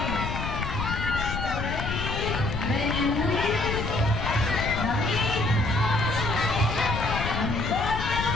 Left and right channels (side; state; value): left; noise; rumble, 4 dB below the sound